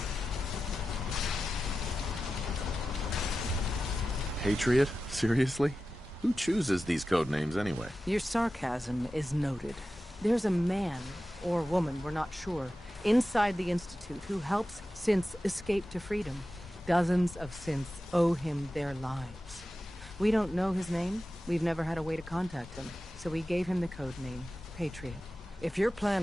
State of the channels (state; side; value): normal; both; correlation 0.94